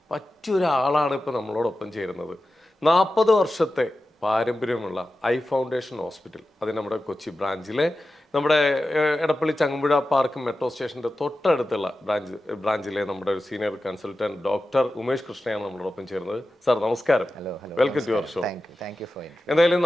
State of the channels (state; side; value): normal; both; correlation 0.93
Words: പറ്റിയൊരാളാണ് ഇപ്പോൾ നമ്മളോടൊപ്പം ചേരുന്നത്. 40 വർഷത്തെ പാരമ്പര്യമുള്ള ഐ ഫൗണ്ടേഷൻ ഹോസ്പിറ്റൽ, അത് നമ്മുടെ കൊച്ചി ബ്രാഞ്ചിലെ നമ്മുടെ എടപ്പള്ളി ചങ്ങമ്പുഴ പാർക്ക് മെട്രോ സ്റ്റേഷൻ്റെ തൊട്ടടുത്തുള്ള ബ്രാഞ്ചിലെ നമ്മുടെ ഒരു സീനിയർ കൺസൾട്ടന്റ് ഡോക്ടർ ഉമേഷ് കൃഷ്ണയാണ് നമ്മളോടൊപ്പം ചേരുന്നത്. സാർ നമസ്കാരം, വെൽക്കം ടു യുവർ ഷോ. എന്തായാലും